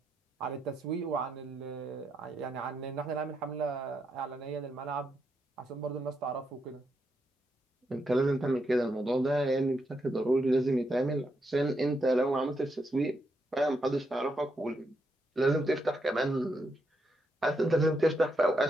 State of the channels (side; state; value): both; normal; correlation 0.81